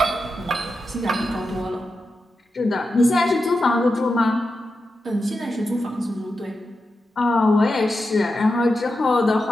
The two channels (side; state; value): both; normal; correlation 0.89